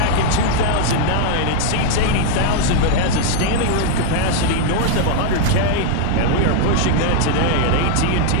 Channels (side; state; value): both; different; correlation 0.00